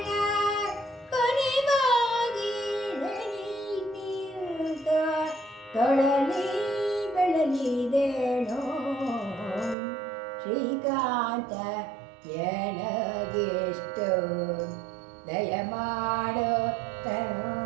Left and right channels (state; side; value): drops out; left; at 9.8 s